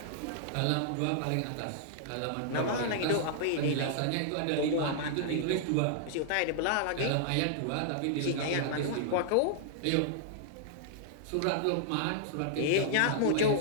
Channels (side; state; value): both; different; correlation -0.01